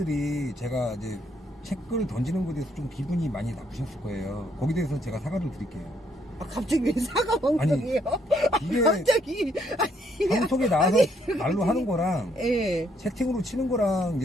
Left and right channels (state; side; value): normal; both; correlation 0.71